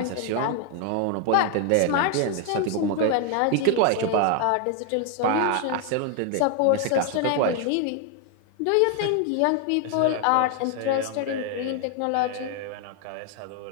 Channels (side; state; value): both; different; correlation 0.01